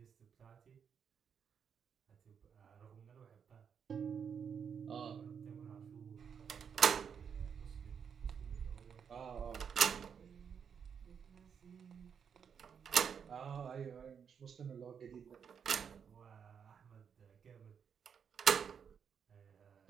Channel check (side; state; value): left; quieter; 7.2 dB